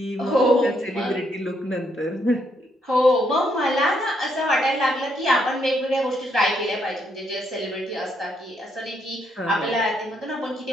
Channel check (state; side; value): normal; both; correlation 0.75